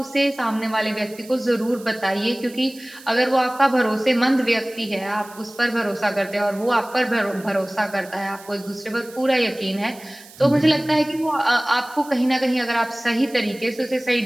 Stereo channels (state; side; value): noise; right; hiss, 21 dB below the sound